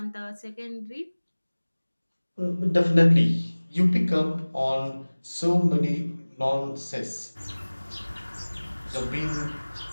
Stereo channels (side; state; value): both; inverted; correlation -1.00